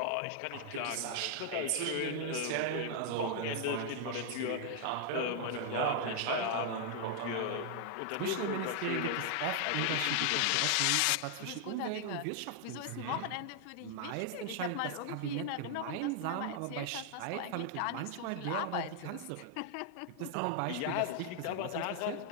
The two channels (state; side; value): different; both; correlation 0.00